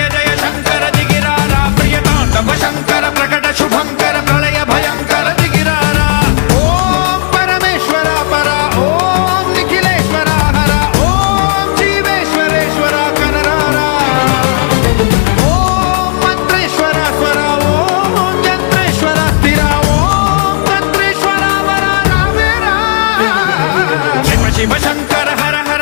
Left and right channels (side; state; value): right; silent; digital silence